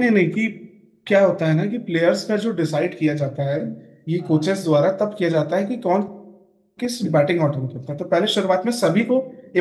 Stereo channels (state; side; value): identical; both; correlation 1.00